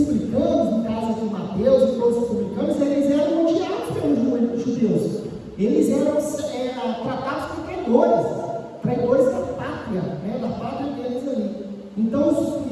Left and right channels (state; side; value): identical; both; correlation 1.00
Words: no caso aqui Mateus e todos os publicanos, eles eram odiados pelos judeus. Eles eram tratados como traidores da pátria, né? Da pátria deles ali. Então,